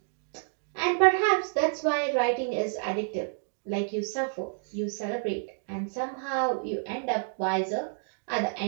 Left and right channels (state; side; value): silent; left; digital silence